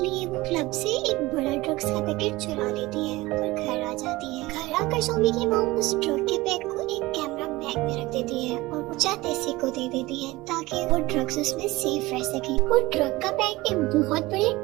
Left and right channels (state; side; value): quieter; left; 20.1 dB